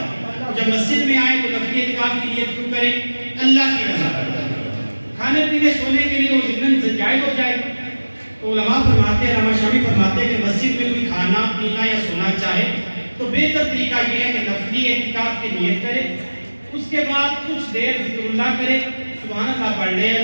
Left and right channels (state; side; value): inverted; both; correlation -1.00